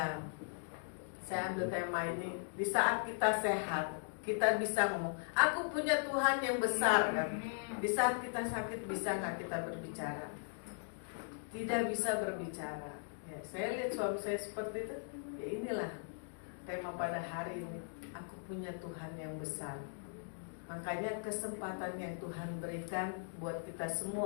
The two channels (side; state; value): right; silent; digital silence